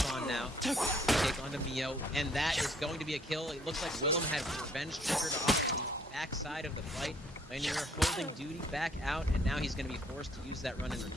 now to take onto Mio, and that is going to be a kill. It looks like Willem had revenge triggered off the backside of the fight. Vaynor holding Duty back out, and now he's going to be forced to use that run and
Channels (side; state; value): both; normal; correlation 0.64